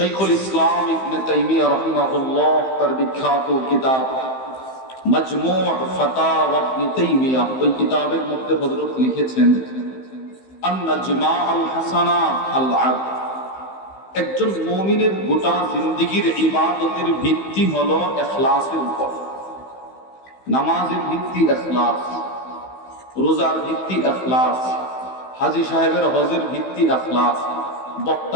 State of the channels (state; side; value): late; right; 15 ms